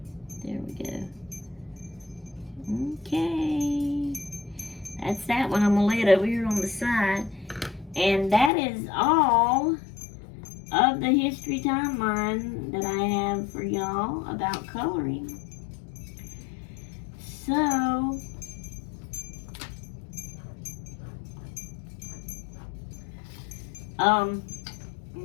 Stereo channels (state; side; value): drops out; right; at 8.5 s